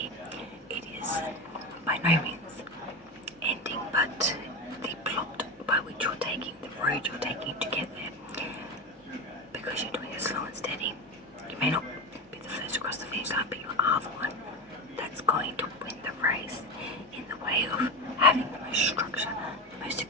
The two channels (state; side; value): normal; both; correlation 0.20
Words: It is by no means ending, but the plot by which you're taking, the road you're taking to get there, because you're doing it slow and steady. You may not be the first across the finish line, but you are the one that's going to win the race in the way of having the most structure, the most